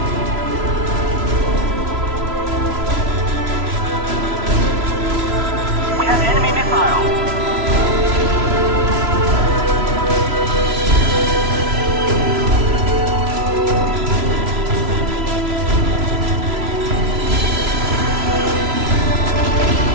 We have enemy missile.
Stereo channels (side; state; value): left; late; 3.0 ms